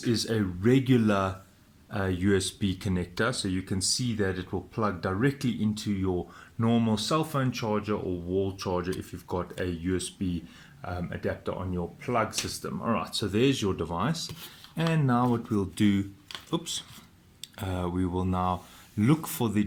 is a regular USB connector, so you can see that it will plug directly into your normal cell phone charger or wall charger if you've got a USB adapter on your plug system. All right, so there's your device, and now what we'll do, we will now look for the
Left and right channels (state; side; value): identical; both; correlation 1.00